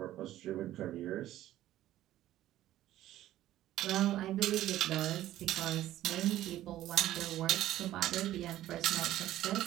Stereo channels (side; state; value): left; quieter; 13.8 dB